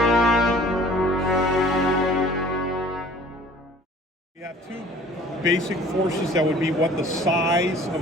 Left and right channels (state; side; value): normal; both; correlation 0.50